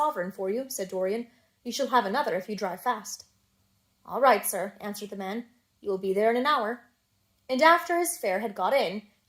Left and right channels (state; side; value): identical; both; correlation 1.00